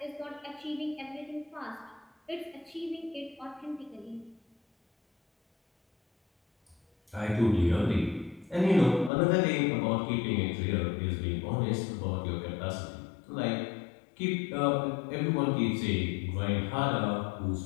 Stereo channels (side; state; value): right; drops out; at 9.1 s